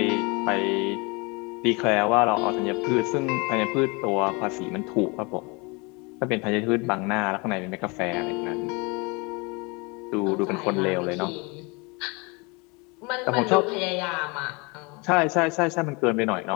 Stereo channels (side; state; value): right; quieter; 28.4 dB